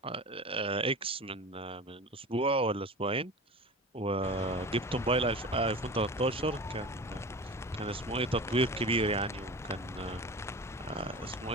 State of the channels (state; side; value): normal; both; correlation 0.34